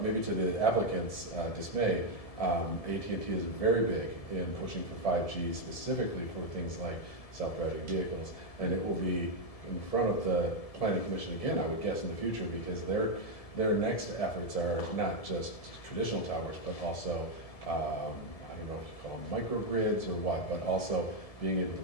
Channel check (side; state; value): right; late; 1.7 ms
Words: maybe to the applicant's dismay, AT&T is very big in pushing for 5G, specifically for things like self-driving vehicles. And it will be in front of the Planning Commission again, I would guess, in the future, because their next efforts are not just traditional towers, but also I don't know if you call them microgrids or what, but also being able to